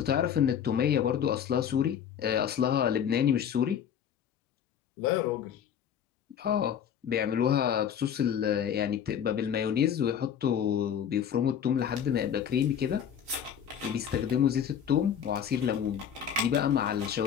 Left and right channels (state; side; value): quieter; right; 8.6 dB